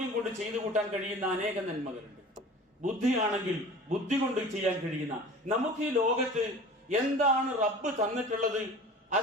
കൊണ്ട് ചെയ്തു കൂട്ടാൻ കഴിയുന്ന അനേകം നന്മകളുണ്ട്. ബുദ്ധിയാണെങ്കിൽ ബുദ്ധി കൊണ്ട് ചെയ്യാൻ കഴിയുന്ന, നമുക്ക് ഈ ലോകത്ത് എന്താണ് റബ്ബ് തന്നിട്ടുള്ളത്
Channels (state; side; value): normal; both; correlation 0.40